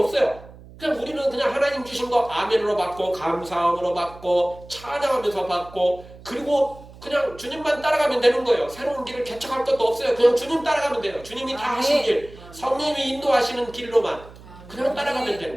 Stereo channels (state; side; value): noise; right; hum, 19 dB below the sound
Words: 그냥 우리는 그냥 하나님 주신 거 아멘으로 받고 감사함으로 받고 찬양하면서 받고 그리고 그냥 주님만 따라가면 되는 거예요. 새로운 길을 개척할 것도 없어요. 그냥 주님 따라가면 돼요. 주님이 다 하신 길, 성령님이 인도하시는 길로만 그냥 따라가면